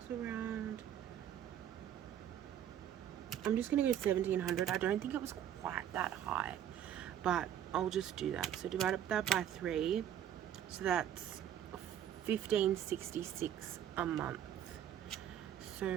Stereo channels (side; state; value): left; quieter; 10.2 dB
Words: was around I'm just going to go 1700. I don't think it was quite that high, but I'll just do that. So divide that by 3. So that's 1566 a month. So